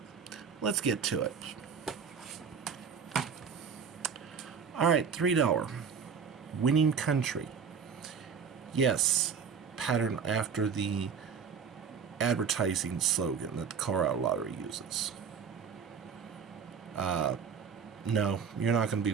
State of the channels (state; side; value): quieter; left; 6.5 dB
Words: let's get to it. Alright, $3. Winning country. Yes, pattern after the advertising slogan that the Colorado Lottery uses. No, you're not going to be